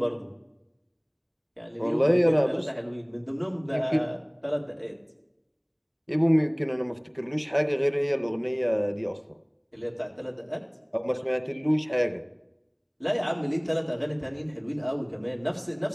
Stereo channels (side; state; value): both; identical; correlation 1.00